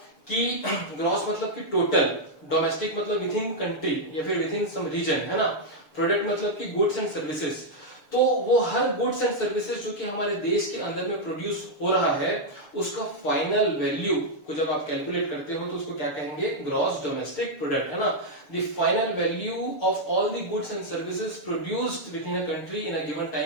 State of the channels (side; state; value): right; late; 6.8 ms